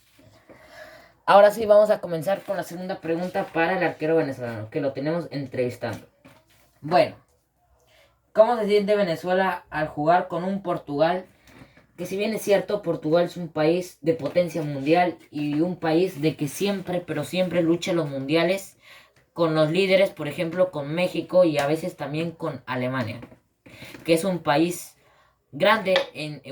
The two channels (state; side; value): identical; both; correlation 1.00